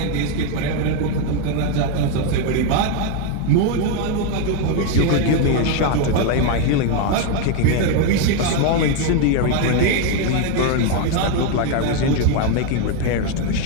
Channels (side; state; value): both; different; correlation 0.01